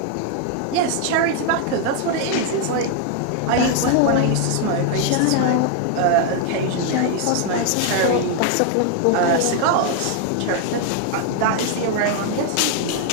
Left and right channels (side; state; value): both; different; correlation 0.00